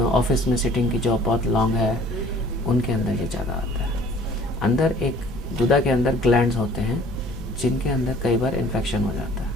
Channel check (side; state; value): both; normal; correlation 0.53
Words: ऑफिस में सिटिंग की जॉब बहुत लॉन्ग है, उनके अंदर ये ज़्यादा आता है। अंदर एक गुदा के अंदर ग्लैंड्स होते हैं जिनके अंदर कई बार इन्फेक्शन हो जाता है।